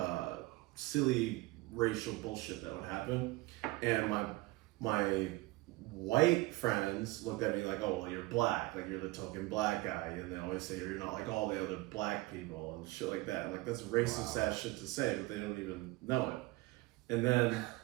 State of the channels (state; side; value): quieter; left; 20.9 dB